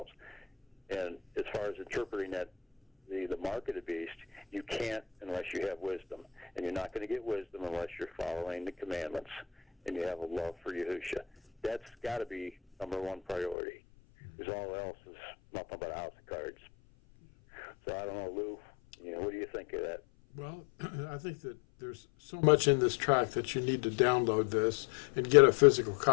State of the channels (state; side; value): drops out; right; at 13.6 s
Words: And as far as interpreting that, the mark of the beast, you can't unless you have wisdom. And you're not going to get wisdom unless you're following the commandments and you have a love for Yahusha. That's got to be number one priority, because all else is nothing but a house of cards. So I don't know, Lou, what do you think of that? Well, I think that there's so much in this track that you need to download this and get a physical